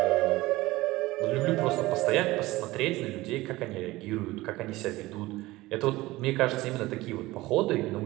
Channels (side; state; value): left; quieter; 19.0 dB